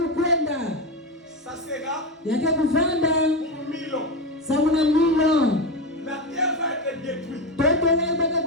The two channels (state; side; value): normal; both; correlation 0.16